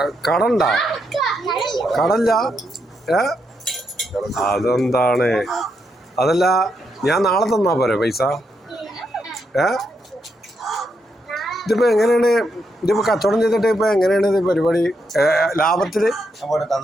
കടണ്ടാ കടല്ല അതെന്താണ് അതല്ല ഞാൻ നാളെ തന്നാ പോരെ പൈസ ഇതിപ്പോ എങ്ങനെയാണ് ഇതിപ്പോ കച്ചവടം ചെയ്തിട്ട് ഇപ്പൊ എങ്ങനെയാണ് ഇത് പരിപാടി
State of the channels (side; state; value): both; normal; correlation 0.80